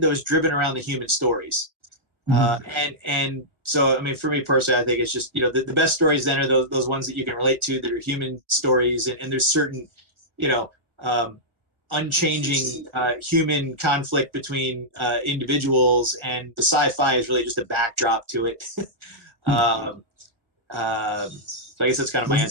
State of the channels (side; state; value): left; late; 1.5 ms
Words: though is driven around the human stories. And so, I mean, for me personally, I think it's just, the best stories then are those ones that you can relate to, that are human stories, and there's certain, unchanging human conflict between individuals, and the sci-fi is really just a backdrop to it. So I guess that's kind of my